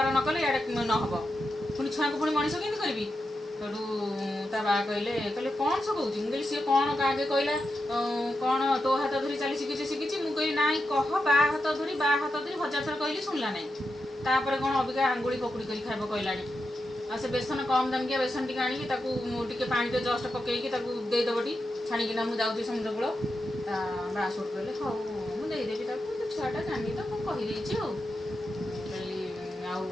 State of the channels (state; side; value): normal; both; correlation 0.88